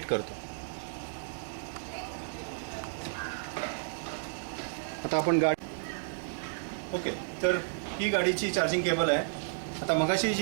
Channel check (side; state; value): left; silent; digital silence